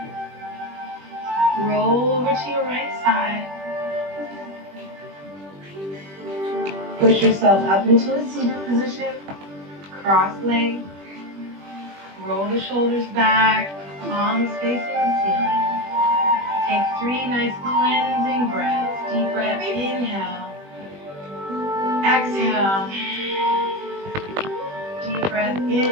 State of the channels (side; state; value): left; late; 21 ms